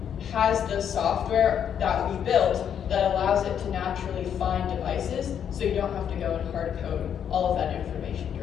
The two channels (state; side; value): quieter; right; 8.6 dB